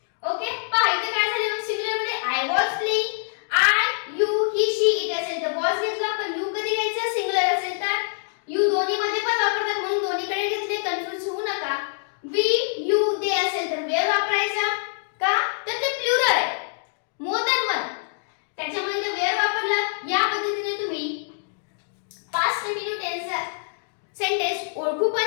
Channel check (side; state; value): right; silent; digital silence